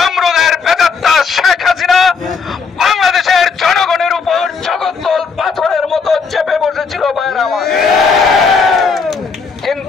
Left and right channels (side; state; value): right; quieter; 5.2 dB